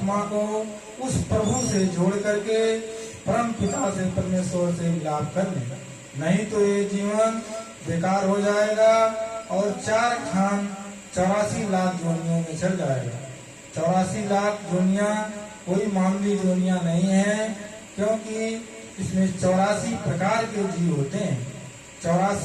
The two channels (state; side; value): identical; both; correlation 1.00